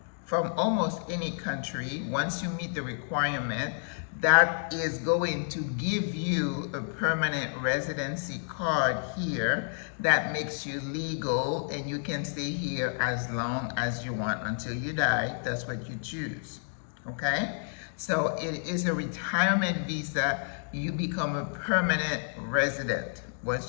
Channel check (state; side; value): silent; right; 58 dB below the other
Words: from almost any country. Once you meet the requirement, that is going to give you a permanent residency card here that makes you legal, and you can stay here as long as you want until you die. That's what you choose. Okay? So it is a retirement visa. You become a permanent resident